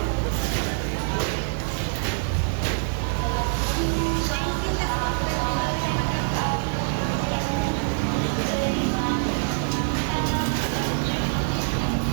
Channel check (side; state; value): left; silent; 60 dB below the other